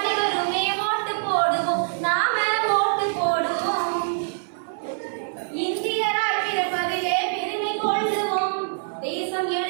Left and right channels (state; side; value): silent; left; 58 dB below the other